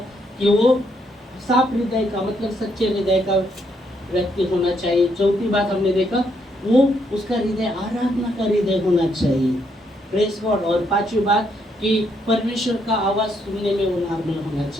कि वो साफ हृदय का मतलब सच्चे हृदय का व्यक्ति होना चाहिए। चौथी बात हमने देखा वो उसका हृदय आराधना का हृदय होना चाहिए, प्रेज गॉड। और पांचवी बात कि परमेश्वर का आवाज़ सुनने में वो नॉर्मल होना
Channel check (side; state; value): both; normal; correlation 0.74